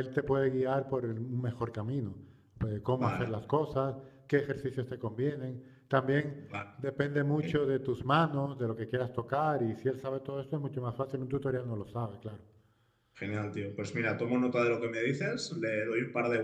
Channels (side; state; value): both; identical; correlation 1.00